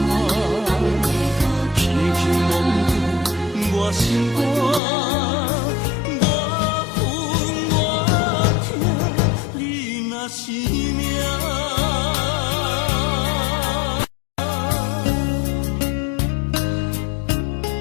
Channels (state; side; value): drops out; right; at 4.8 s